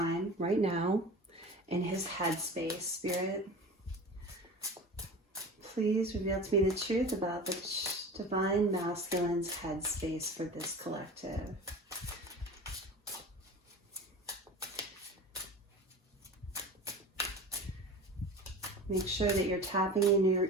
right now, in his headspace, Spirit? Please reveal to me the truth about the Divine Masculine's headspace for this collective. Make sure that you're tapping into your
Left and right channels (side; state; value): both; normal; correlation 0.35